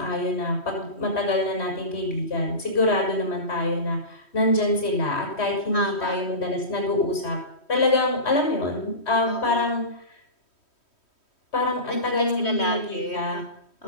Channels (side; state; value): right; late; 3.1 ms